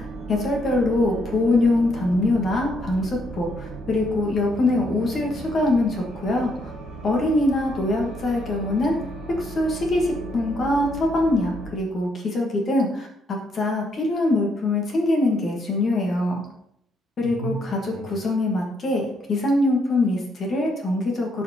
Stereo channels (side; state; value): both; normal; correlation 0.73